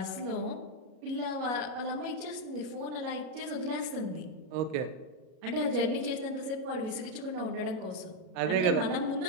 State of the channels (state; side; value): late; left; 37 ms